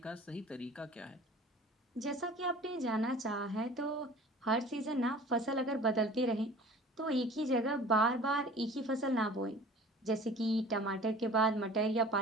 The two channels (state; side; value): normal; both; correlation 0.44